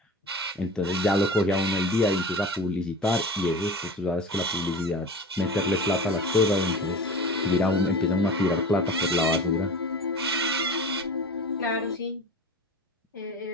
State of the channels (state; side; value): normal; both; correlation 0.34